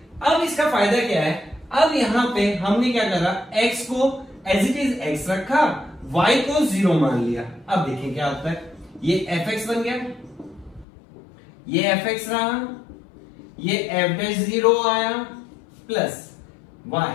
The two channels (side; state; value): right; drops out; at 10.9 s